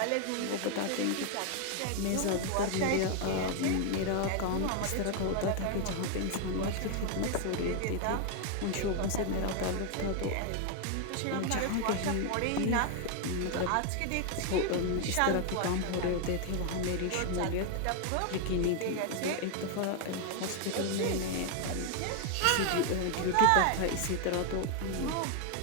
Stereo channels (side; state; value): both; different; correlation 0.01